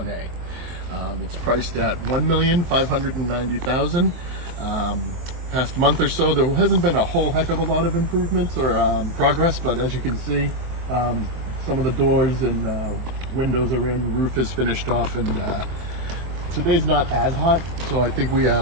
It's priced at $1,590,000. Past month or so, there hasn't been a whole heck of a lot of improvements or progress, but as you can see, some of the doors and windows are in, roof is finished off, and today's not as hot, so I think we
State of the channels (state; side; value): late; left; 23 ms